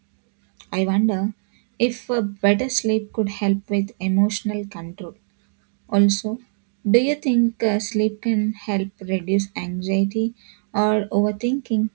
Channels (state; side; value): silent; left; digital silence